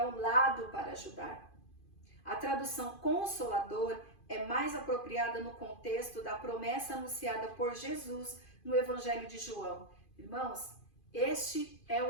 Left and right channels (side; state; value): right; late; 2.5 ms